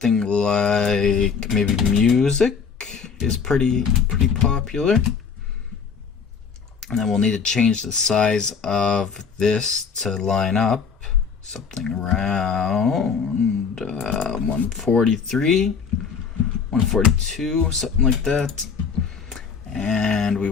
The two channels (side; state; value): right; quieter; 6.0 dB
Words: like maybe music is pretty popular. And then we'll need to change the size of this to line up something around 143, 142, something like that. And we